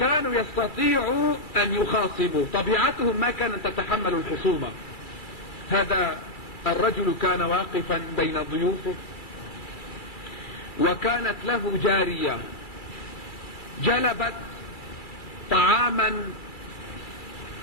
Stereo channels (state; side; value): late; right; 2.3 ms